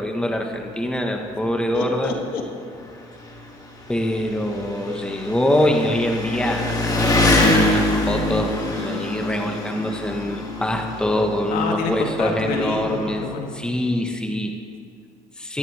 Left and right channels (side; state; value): both; normal; correlation 0.65